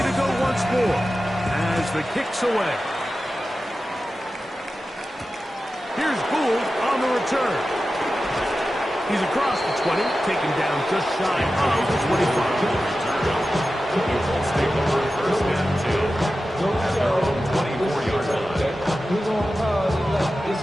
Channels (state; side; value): normal; both; correlation 0.93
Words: to go once more as the kick's away. Here's Gould on the return. He's across the 20, taken down just shy of the 25. Neutral stay over first and 2. At their own 24-yard line.